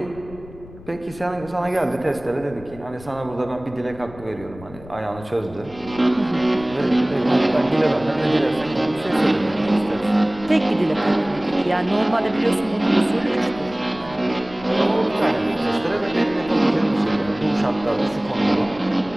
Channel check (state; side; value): noise; left; rumble, 18 dB below the sound